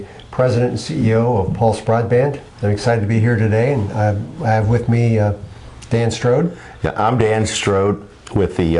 President and CEO of Pulse Broadband. I'm excited to be here today, and I have with me Dan Strode. Yeah, I'm Dan Strode with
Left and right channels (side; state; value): both; identical; correlation 1.00